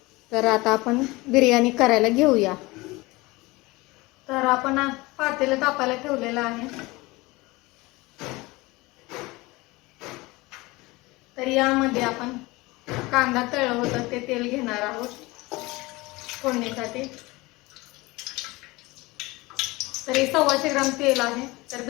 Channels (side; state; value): right; quieter; 22.2 dB